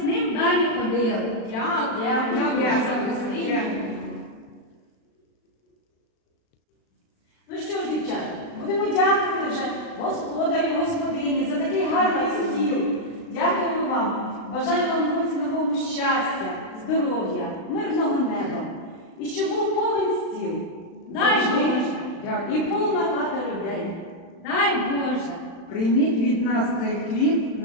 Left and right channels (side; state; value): right; late; 36 ms